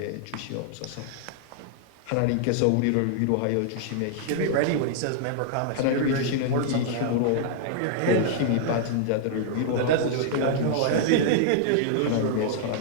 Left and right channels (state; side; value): different; both; correlation -0.01